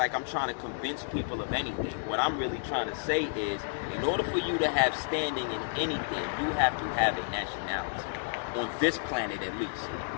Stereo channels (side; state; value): right; silent; 57 dB below the other